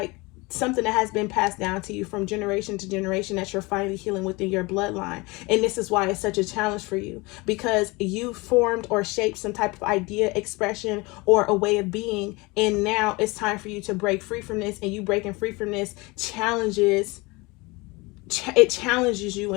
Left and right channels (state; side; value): quieter; right; 24.8 dB